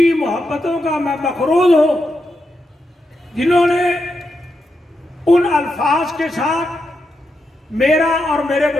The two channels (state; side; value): normal; both; correlation 0.85